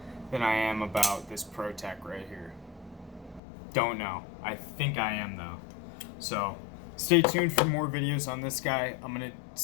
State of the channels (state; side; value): drops out; right; at 3.4 s